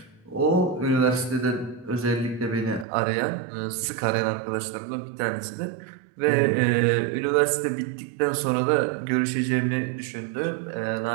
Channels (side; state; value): left; drops out; at 2.9 s